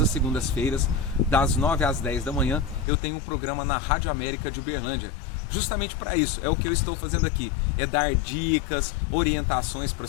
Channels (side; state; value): right; drops out; at 2.9 s